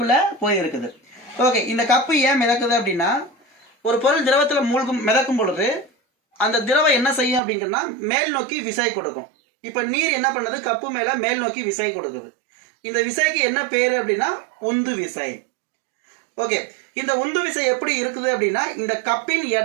போயிருக்குது. ஓகே, இந்த கப்பு ஏன் மிதக்குது அப்படின்னா, ஒரு பொருள் திரவத்துல மிதக்கும் பொழுது அந்த திரவம் என்ன செய்யும் அப்படின்னா மேல் நோக்கி விசை கொடுக்கும். இப்ப நீர் என்ன பண்ணுது? கப்பு மேல மேல் நோக்கி விசை கொடுக்குது. இந்த விசைக்கு என்ன பேரு அப்படின்னா உந்து விசை. ஓகே, இந்த உந்து விசை எப்படி இருக்குது அப்படின்னா, இந்த கப்பின்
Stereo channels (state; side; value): drops out; left; at 7.4 s